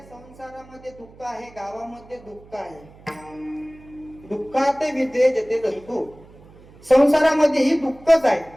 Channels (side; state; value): right; noise; hum, 23 dB below the sound